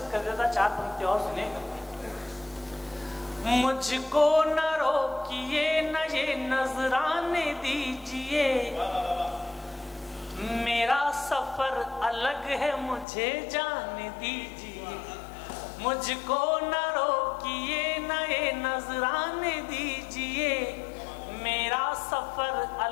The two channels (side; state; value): right; drops out; at 13.1 s